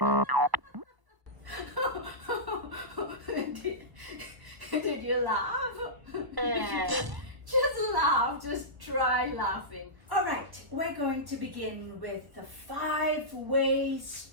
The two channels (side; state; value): left; late; 1.0 ms